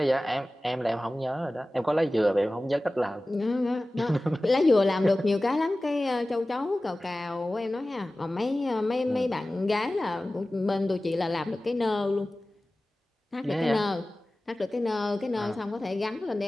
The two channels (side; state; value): both; normal; correlation 0.97